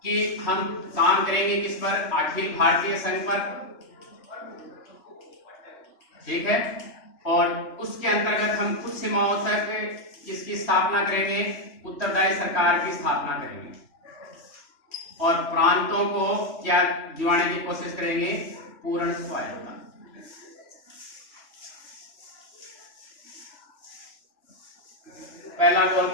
कि हम काम करेंगे किस पर? अखिल भारतीय संघ पर, ठीक है, और उसके अंतर्गत हम कुछ सीमाओं तक इसकी स्थापना करेंगे, उत्तरदायी सरकार की स्थापना करेंगे और प्रांतों को क्या दिवाने की कोशिश करेंगे? पूर्ण स्वायत्तता। पहला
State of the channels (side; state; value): right; late; 3.2 ms